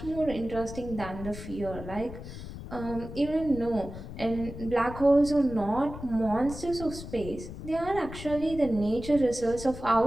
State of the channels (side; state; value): left; noise; rumble, 11 dB below the sound